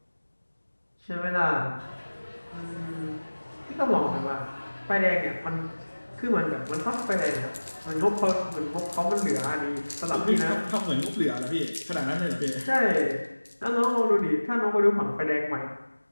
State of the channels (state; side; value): inverted; both; correlation -1.00